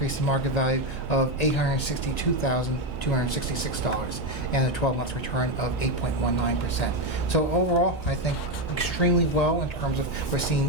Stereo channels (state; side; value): normal; both; correlation 0.09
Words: in market value of $862,266 and a 12-month return of 8.19%. So overall, I think extremely well in terms of we're